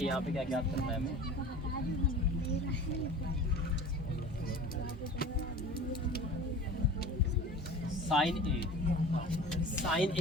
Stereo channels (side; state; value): both; normal; correlation 0.39